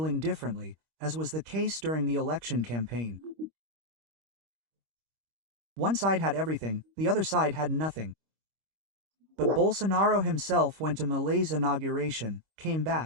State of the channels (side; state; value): left; late; 25 ms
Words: differently, as was the case during the election campaign. One side had everything, the other side had nothing. But Bolsonaro himself went to Malay's inauguration, came